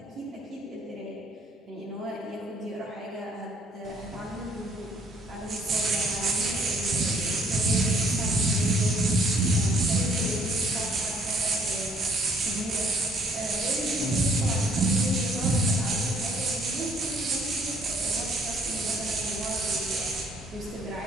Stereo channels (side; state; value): both; normal; correlation 0.63